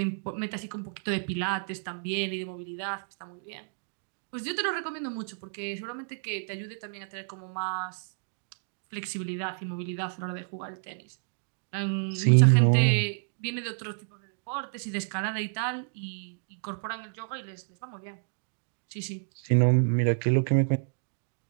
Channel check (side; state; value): left; silent; digital silence